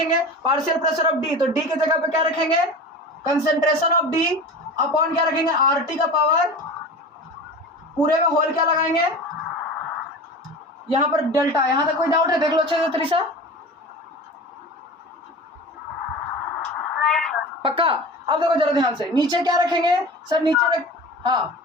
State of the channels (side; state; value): both; normal; correlation 0.34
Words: पार्शियल प्रेशर ऑफ डी, तो डी की जगह पे क्या रखेंगे, कंसंट्रेशन ऑफ डी, अपॉन क्या रखेंगे आर टी का पावर, पूरे में होल क्या लगाएंगे, यहां पर डेल्टा। यहां तक कोई डाउट है, देख लो अच्छे से त्रिशा, पक्का। अब देखो जरा ध्यान से, नीचे क्या रखेंगे, सर नीचे रख,